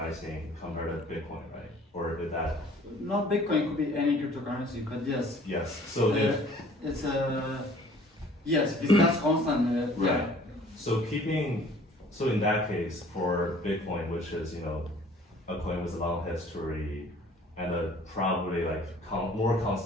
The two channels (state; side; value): normal; both; correlation 0.53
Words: compared to Bitcoin, right? Or is that? Not Bitcoin, it could be any cryptocurrency, but yes. Yes. So if it's yes, if that's constant. right. Yeah. So in that case, for Bitcoin, which is a coin with a long history and a probably like more